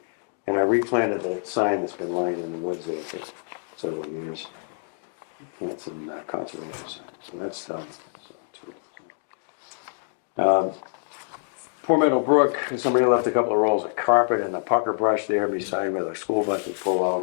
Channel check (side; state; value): right; silent; digital silence